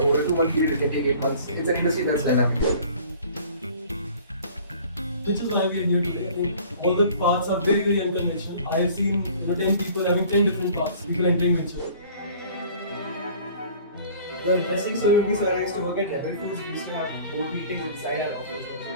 a 2-month period. It can take 8 months. It's an industry that's dynamic. Which is why we are here today. I think all the paths are very, very unconventional. I have seen 10 people having 10 different paths. People entering venture. The interesting story would be, so I used to work at Rebel Foods. We used to have board meetings inside our office.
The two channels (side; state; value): both; inverted; correlation -0.49